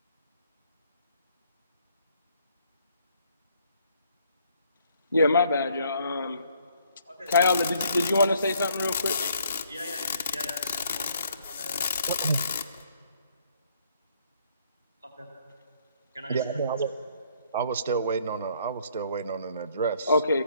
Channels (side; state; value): both; inverted; correlation -0.66